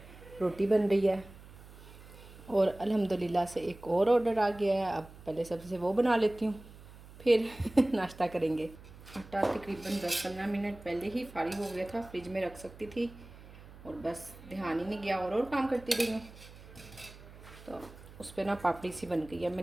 रोटी बन रही है और अल्हम्दुलिल्लाह से एक और ऑर्डर आ गया है। अब पहले सबसे वो बना लेती हूँ, फिर नाश्ता करेंगे। आटा तकरीबन 10-15 मिनट पहले ही फारिग हो गया था, फ्रिज में रख सकती थी और बस ध्यान ही नहीं गया और काम करती रही हूँ। तो उस पर ना पापड़ी सी बन गई है।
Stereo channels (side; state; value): right; noise; hum, 19 dB below the sound